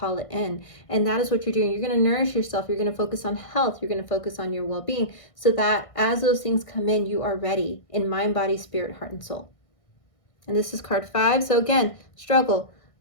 it in. And that is what you're doing. You're going to nourish yourself. You're going to focus on health. You're going to focus on your well-being, so that as those things come in, you are ready in mind, body, spirit, heart, and soul. And this is card 5. So again, struggle.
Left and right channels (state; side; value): late; right; 1.6 ms